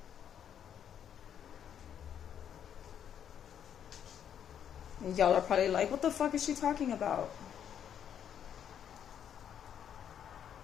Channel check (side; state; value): right; quieter; 9.0 dB